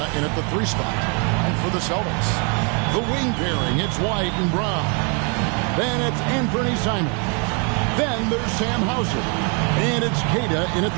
in at the 3 spot. And for the Celtics, the wing pairing, it's White and Brown. Then it's Anthony Simons. Then there's Sam Hauser. And it's Queta in at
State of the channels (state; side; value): quieter; left; 36.3 dB